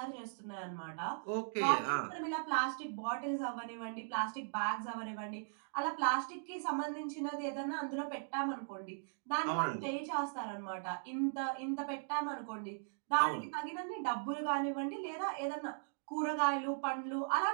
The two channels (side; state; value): left; silent; digital silence